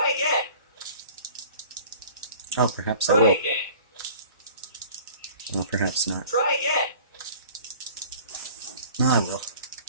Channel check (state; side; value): inverted; both; correlation -0.47